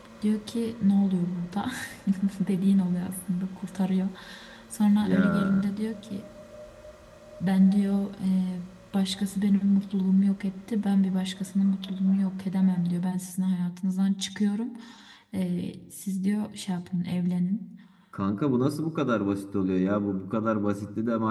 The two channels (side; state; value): both; identical; correlation 1.00